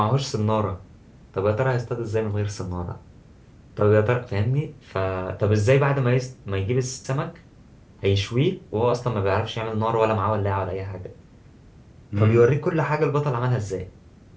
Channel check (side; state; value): both; identical; correlation 1.00